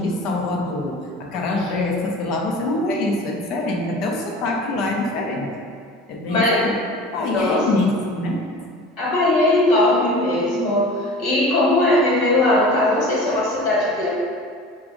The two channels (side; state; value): both; normal; correlation 0.39